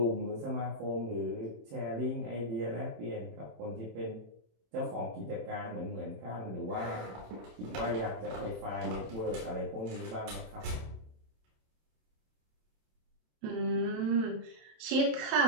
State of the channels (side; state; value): left; late; 27 ms